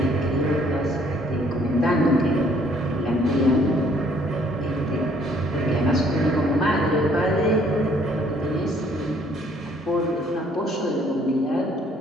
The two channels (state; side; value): normal; both; correlation 0.62